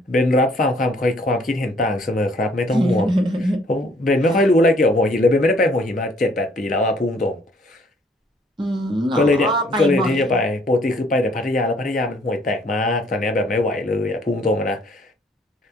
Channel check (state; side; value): normal; both; correlation 0.62